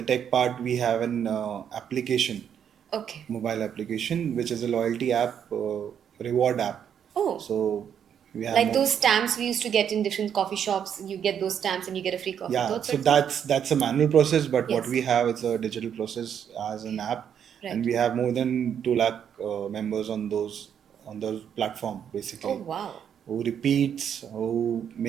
tech part, we have an application, Okay. mobile application, which is a loyalty app, reward app. Oh, So we have like those stamps we used to get in different coffee shops. You get those stamps and you get a free coffee. yeah. Those So sorts of- that's a manual process, but what Yes. we have is a digital process as an app, Right. and we have more than 2 lakh members on those platform basically. Oh wow. Who repeats, who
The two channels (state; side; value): quieter; left; 8.5 dB